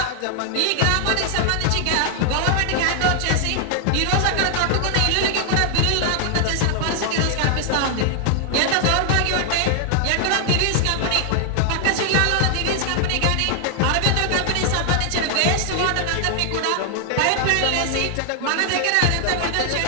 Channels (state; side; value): different; both; correlation 0.00